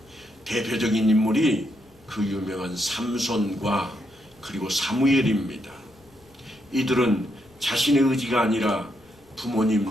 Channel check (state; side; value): noise; left; rumble, 29 dB below the sound